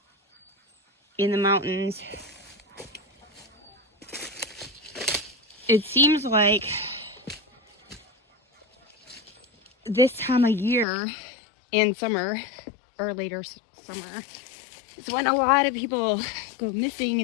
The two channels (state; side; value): drops out; right; at 10.9 s